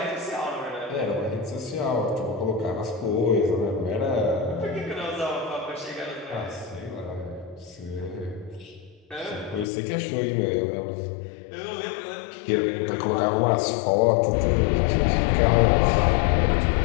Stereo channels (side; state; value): right; drops out; at 9.7 s